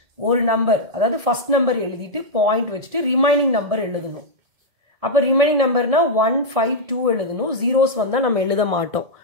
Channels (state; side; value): late; left; 1.7 ms